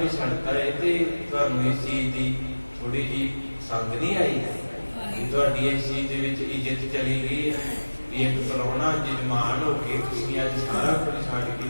ਛੱਡਤਾ, ਇਹ ਤੇ ਤੁਹਾਨੂੰ ਇਸ ਚੀਜ਼ ਦੀ ਥੋੜੀ ਜਿਹੀ ਸੰਗ ਨਹੀਂ ਆਈ ਕਿ ਤੁਹਾਡੀ ਇਸ ਚੀਜ਼ ਦੇ ਵਿੱਚ ਇੱਜ਼ਤ ਚਲੀ ਗਈ ਹੈ ਵੀ ਇੱਕ ਪ੍ਰਾਹੁਣਾ ਜਜਮਾਨ ਹੋ ਕੇ ਤੁਸੀਂ ਅੱਜ ਸਾਰਾ ਕੁਝ ਛੱਡ ਕੇ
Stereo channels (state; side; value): inverted; both; correlation -1.00